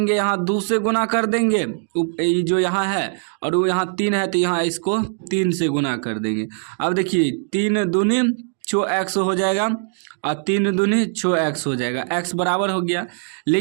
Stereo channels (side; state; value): left; silent; 59 dB below the other